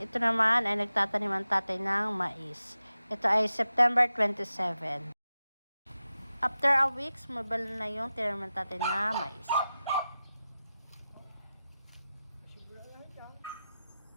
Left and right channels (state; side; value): inverted; both; correlation -0.93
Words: naman ay nagtatanim ang tatay ng mais. Ito ay September 27. After a week, sumabal na yung tinanim ng tatay na mais.